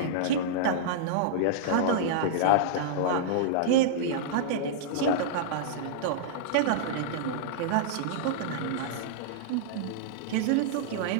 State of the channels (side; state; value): both; different; correlation -0.02